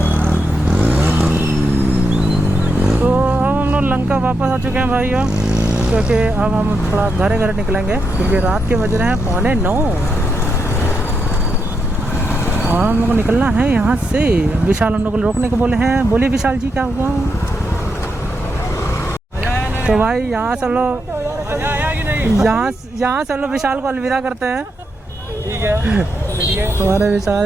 लंका वापस आ चुके हैं भाइयों, क्योंकि अब हम थोड़ा घरे निकलेंगे क्योंकि रात के बज रहे हैं 8:45 और हम लोग को निकलना है यहाँ से। विशाल हम लोग को रोकने को बोले हैं। बोलिए विशाल जी क्या हुआ? तो भाई यहाँ से लोग यहाँ से लोग विशाल को अलविदा करते हैं। ठीक है हमारे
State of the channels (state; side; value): normal; both; correlation 0.83